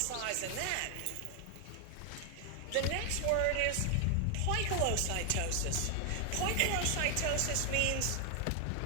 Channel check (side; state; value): both; different; correlation 0.00